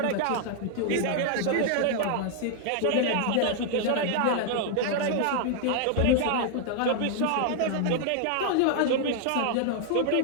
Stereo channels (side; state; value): both; different; correlation 0.00